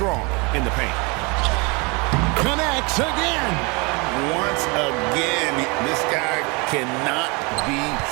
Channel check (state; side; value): quieter; left; 29.1 dB